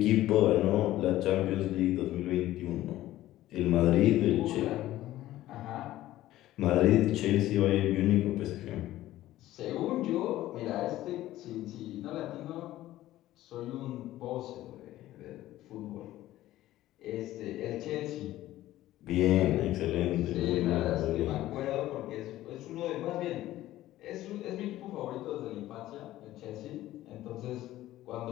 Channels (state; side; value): quieter; right; 14.9 dB